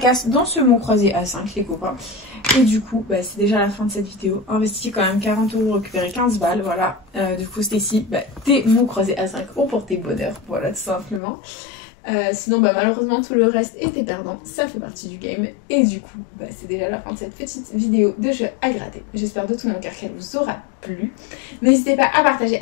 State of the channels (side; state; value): right; drops out; at 11.2 s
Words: dans ce mot croisé à 5 les copains. Et du coup, bah, c'est déjà la fin de cette vidéo. Investi quand même 40 €, récupérer 15 balles, voilà. Du coup, Stacy, bah, tes mots croisés à 5 ont porté bonheur, voilà, tout simplement. Sinon, bah, malheureusement, tout le reste était perdant. Ça fait partie du game. Et du coup, bah, c'est déjà la fin de cette petite vidéo de jeu à gratter. J'espère de tout mon cœur qu'elle vous aura plu. N'hésitez pas à partager,